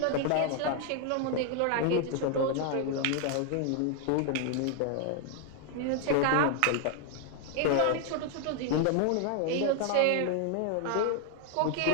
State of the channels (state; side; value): different; both; correlation 0.00